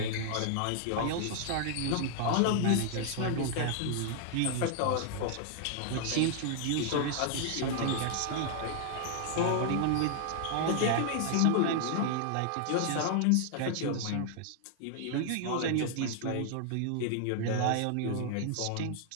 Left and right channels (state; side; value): different; both; correlation 0.00